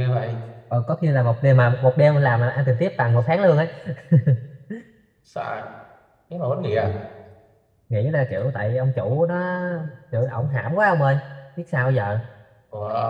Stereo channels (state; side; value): identical; both; correlation 1.00